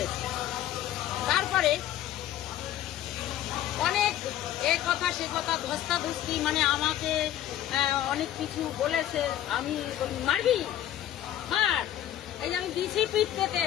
তারপরে অনেক এ কথা সে কথা ধস্তাধস্তি, মানে আমাকে অনেক কিছু বলেছে। আমি বলি, মারবি মার, এই যে আমি দিছি পিঠ পেতে,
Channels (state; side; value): quieter; right; 12.1 dB